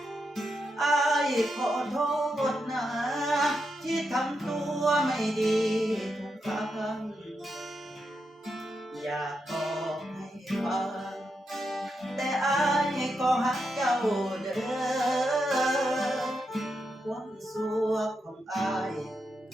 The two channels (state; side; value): normal; both; correlation 0.84